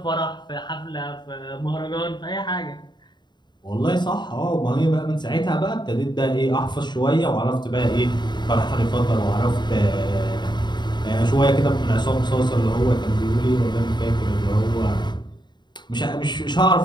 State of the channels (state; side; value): late; right; 0.21 ms